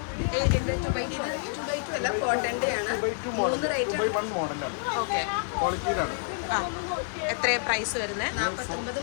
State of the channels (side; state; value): right; silent; digital silence